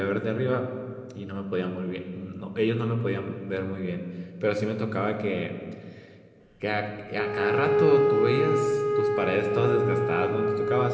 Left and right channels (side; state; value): both; identical; correlation 1.00